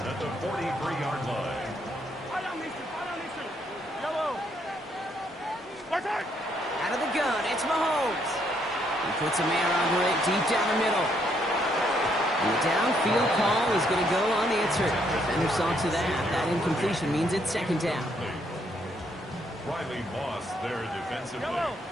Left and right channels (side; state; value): both; normal; correlation 0.72